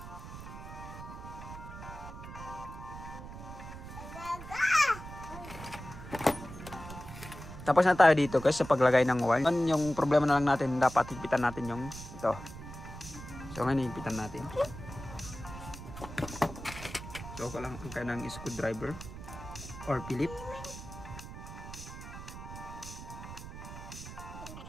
Tapos na tayo dito guys sa paglagay ng wire. Yung problema na lang natin, dapat higpitan natin yung ito. So, ngayon higpitan natin. So lang ang kanang screwdriver or Philip.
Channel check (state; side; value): noise; right; rumble, 12 dB below the sound